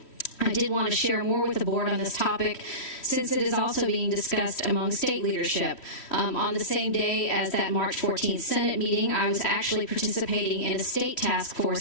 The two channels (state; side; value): late; right; 3.1 ms